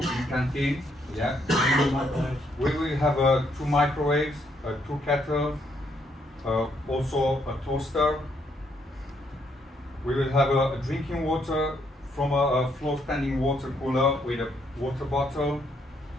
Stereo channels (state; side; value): normal; both; correlation 0.73